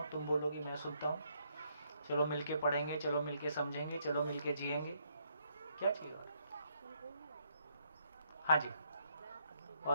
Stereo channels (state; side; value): inverted; both; correlation -0.72